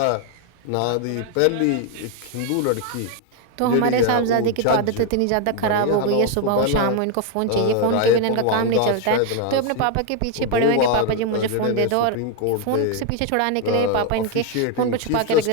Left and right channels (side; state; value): both; different; correlation 0.01